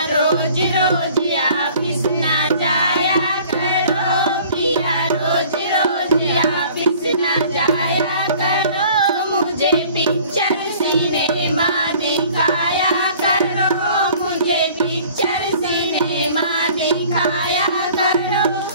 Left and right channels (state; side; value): inverted; both; correlation -0.50